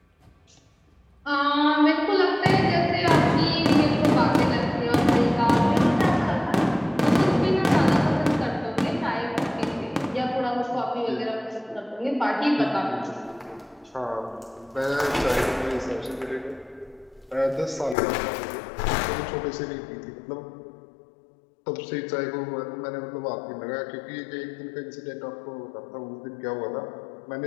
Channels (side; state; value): right; drops out; at 17.9 s